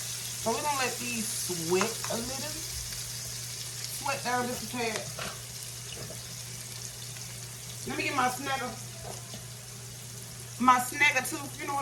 we're going to let these sweat a little. Sweat down just a tad. Let me get my snagger. My snagger tooth, you know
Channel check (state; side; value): identical; both; correlation 1.00